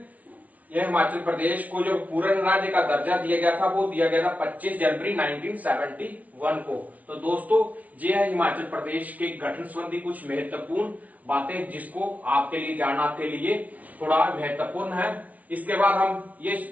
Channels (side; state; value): left; late; 0.070 ms